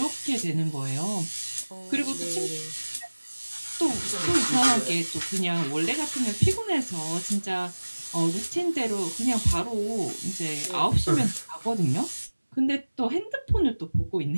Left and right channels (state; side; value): inverted; both; correlation -1.00